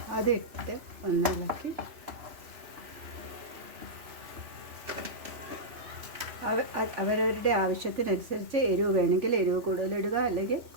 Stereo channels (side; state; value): left; late; 3.0 ms